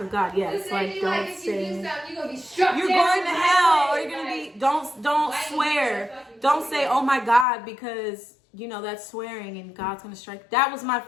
of God, yes. This Like lady, don't like, if you do say, something, you're gonna be struck you're down going to right hell, or away. you're gonna Like, be, don't why swear. you fucking Don't do say, that? oh my God, because you know that's swearing and God's gonna strike. That was my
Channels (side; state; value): right; drops out; at 7.5 s